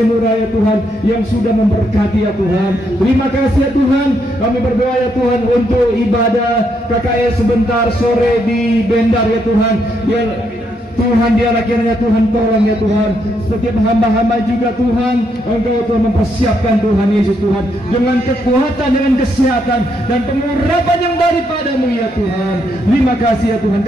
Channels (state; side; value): normal; both; correlation 0.77